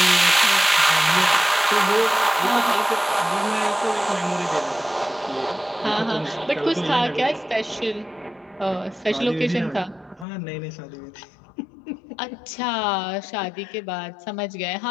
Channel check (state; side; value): drops out; right; at 10.2 s